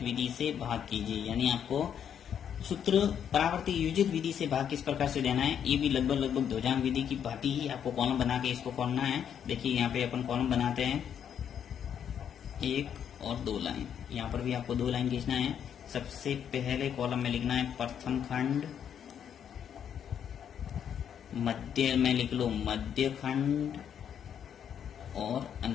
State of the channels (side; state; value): right; quieter; 8.6 dB